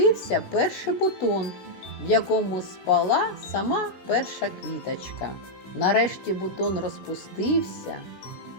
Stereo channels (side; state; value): right; late; 16 ms